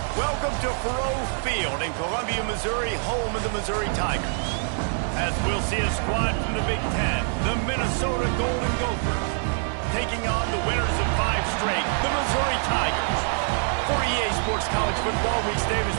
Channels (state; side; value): silent; left; 61 dB below the other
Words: Welcome to Faurot Field in Columbia, Missouri, home of the Missouri Tigers. As we'll see a squad from the Big Ten, the Minnesota Golden Gophers, taking on the winners of 5 straight, the Missouri Tigers. For EA Sports College Football, Reese Davis